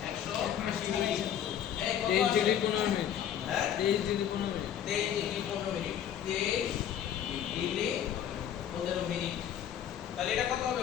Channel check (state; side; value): quieter; right; 9.8 dB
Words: 180 ডিগ্রি। এই কত 23 আসে? Degree 15 minute. হ্যাঁ 23 degree 15 minute. 23 degree 15 minute. 23 degree 15 minute. তাহলে এটা কত হবে